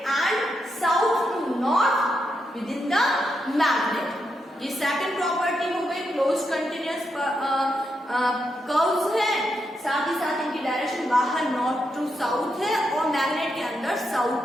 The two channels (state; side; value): normal; both; correlation 0.83